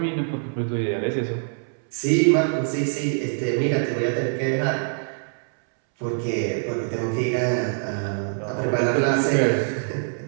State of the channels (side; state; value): left; silent; 63 dB below the other